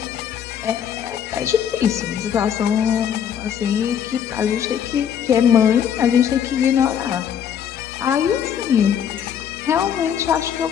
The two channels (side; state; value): right; quieter; 8.7 dB